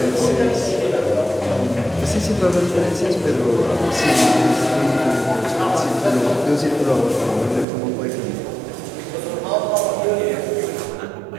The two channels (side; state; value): left; drops out; at 7.7 s